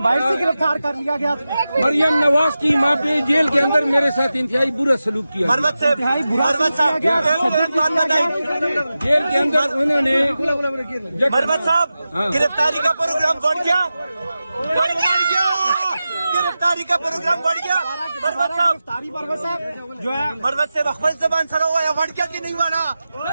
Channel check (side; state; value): both; inverted; correlation -0.93